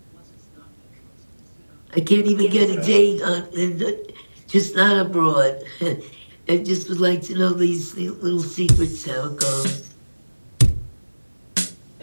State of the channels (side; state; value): both; inverted; correlation -1.00